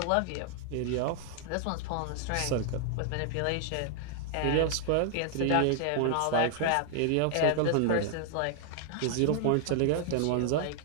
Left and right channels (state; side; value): different; both; correlation 0.00